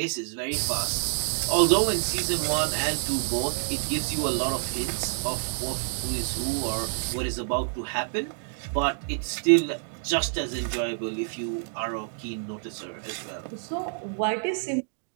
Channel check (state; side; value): silent; left; digital silence